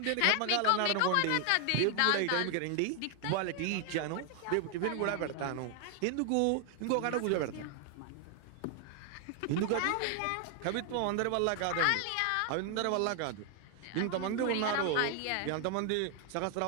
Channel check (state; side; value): different; both; correlation 0.00